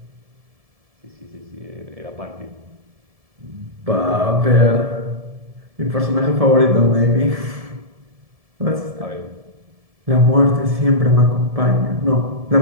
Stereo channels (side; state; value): left; late; 1.7 ms